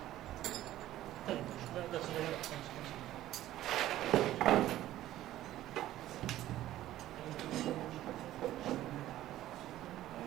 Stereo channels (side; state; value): left; quieter; 14.0 dB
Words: لا ده صغير.